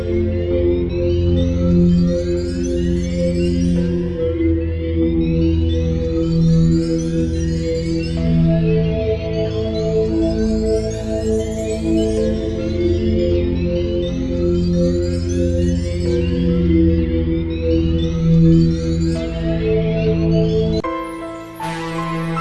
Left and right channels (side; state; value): both; identical; correlation 1.00